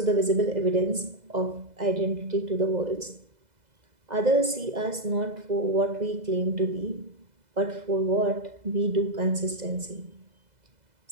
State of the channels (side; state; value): left; late; 2.0 ms